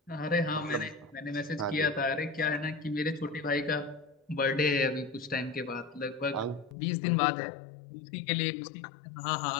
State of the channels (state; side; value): drops out; right; at 6.8 s